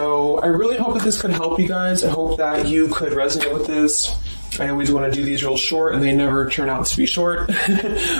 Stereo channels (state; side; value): inverted; both; correlation -1.00